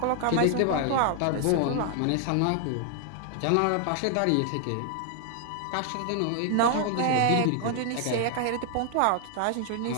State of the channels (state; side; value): different; both; correlation 0.00